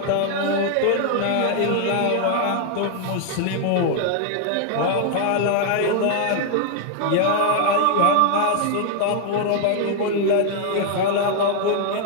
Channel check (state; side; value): different; both; correlation 0.00